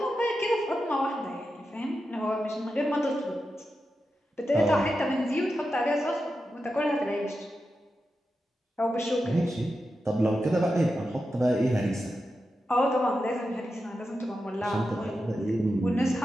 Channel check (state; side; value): normal; both; correlation 0.90